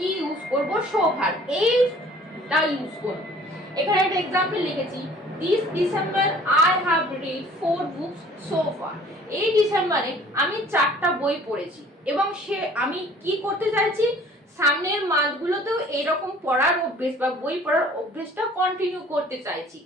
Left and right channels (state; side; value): normal; both; correlation 0.52